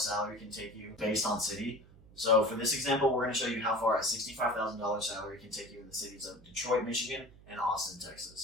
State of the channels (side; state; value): right; noise; hum, 23 dB below the sound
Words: can take you based on city. So for this example, we're going to show you how far a $65,000 salary can take you in the cities of Detroit, Michigan, and Austin,